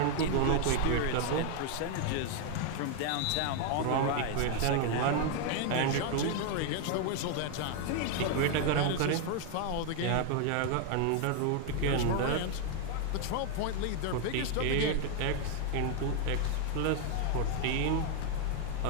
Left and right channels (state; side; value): different; both; correlation 0.00